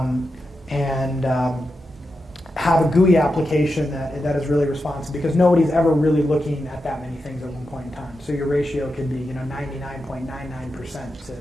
have a GUI application that is really responsive, because nobody's ever really looking at that many things at one point in time. So your ratio could be 99.99%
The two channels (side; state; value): both; normal; correlation 0.88